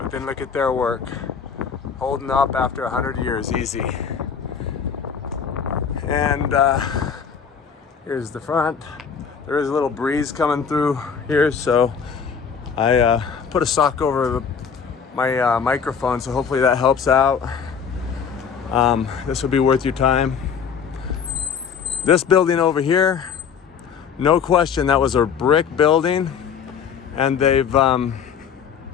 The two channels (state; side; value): quieter; right; 6.8 dB